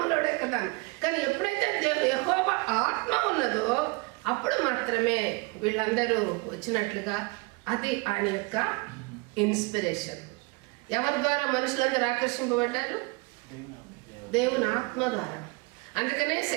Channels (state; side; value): quieter; left; 26.9 dB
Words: కదా. కానీ ఎప్పుడైతే యెహోవా ఆత్మ ఉన్నదో అప్పుడు మాత్రమే వీళ్ళందరూ వచ్చినట్లుగా. అది ఆయన యొక్క ఇన్స్పిరేషన్. ఎవరి ద్వారా మనుషులందరూ ఆకర్షింపబడ్డారు? దేవుని ఆత్మ ద్వారా. అందుకనే